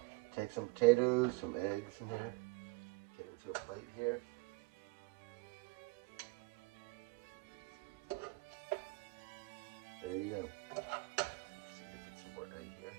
take some potatoes, some eggs in there, get into a plate here. There you go. Let's see if we get some more egg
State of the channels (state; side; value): quieter; left; 25.7 dB